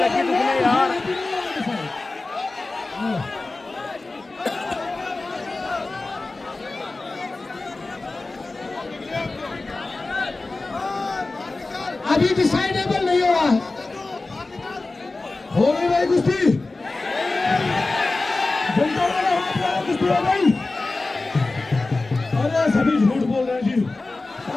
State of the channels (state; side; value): quieter; right; 3.3 dB